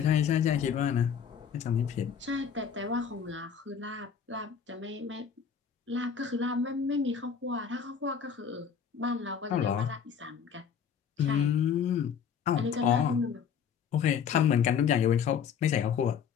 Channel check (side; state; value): right; quieter; 7.3 dB